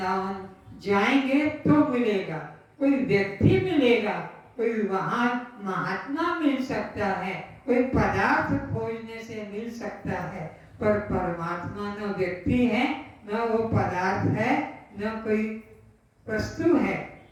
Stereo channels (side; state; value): both; identical; correlation 1.00